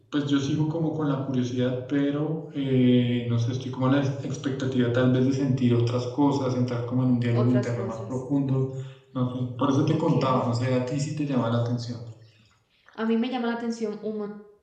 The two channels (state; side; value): identical; both; correlation 1.00